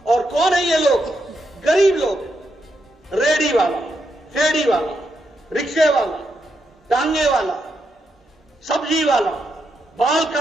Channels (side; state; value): both; normal; correlation 0.82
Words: और कौन है ये लोग? गरीब लोग, रेडी वाला, फेड़ी वाला, रिक्शे वाला, टांगे वाला, सब्जी वाला, बाल